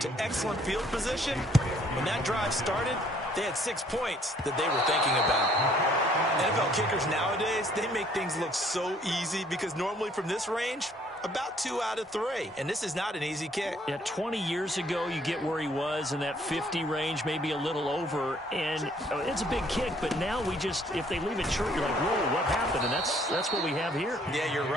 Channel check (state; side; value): normal; both; correlation 0.62